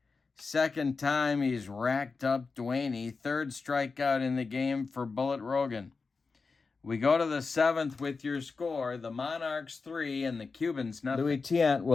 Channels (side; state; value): right; quieter; 4.5 dB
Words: Second time he's racked up Duaney. 3rd strikeout in the game for Bullet Rogan. We go to the 7th with your score. The Monarchs 3 and the Cubans nothing. Louis Tiant